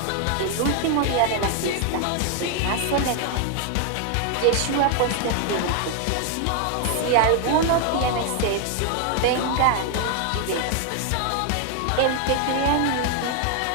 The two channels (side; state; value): both; different; correlation 0.00